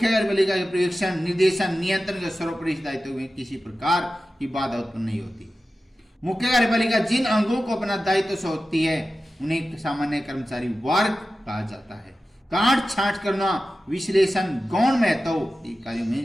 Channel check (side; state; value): both; normal; correlation 0.94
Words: कार्यपालिका के पर्यवेक्षण, निर्देशन, नियंत्रण के सर्वोपरि दायित्व में किसी प्रकार की बाधा उत्पन्न नहीं होती। मुख्य कार्यपालिका जिन अंगों को अपना दायित्व सौंपती है उन्हें सामान्य कर्मचारी वर्ग कहा जाता है। काट छांट करना, विश्लेषण, गौण महत्व कार्यों